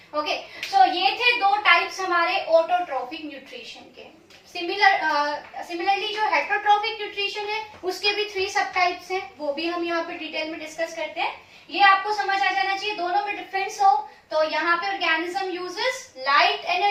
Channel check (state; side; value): identical; both; correlation 1.00